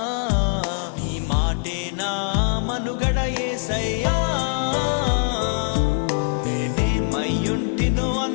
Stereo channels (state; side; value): silent; right; digital silence